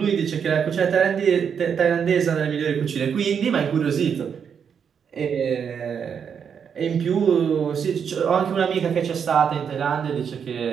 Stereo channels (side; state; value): left; quieter; 7.2 dB